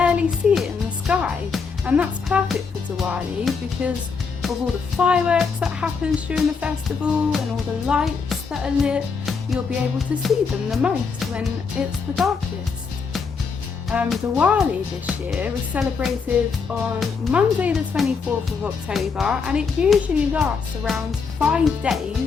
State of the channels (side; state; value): right; quieter; 5.3 dB